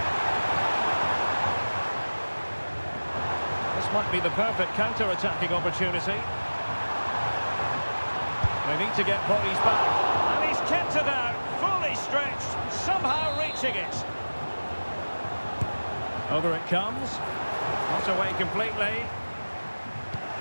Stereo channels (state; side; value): inverted; both; correlation -1.00